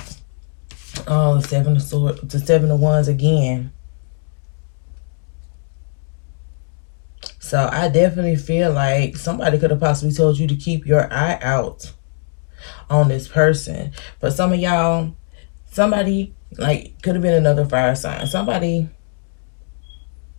Oh, 7 of Swords, the 7 of Wands again. So I definitely feel like somebody could have possibly told you to keep your eye out on this person. But some of y'all, somebody, like, could have been another fire sign. Somebody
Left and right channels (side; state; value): right; silent; digital silence